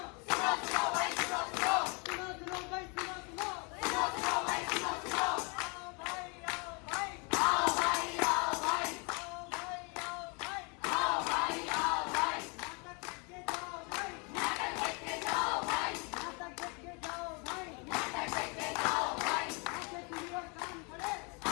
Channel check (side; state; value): right; quieter; 32.3 dB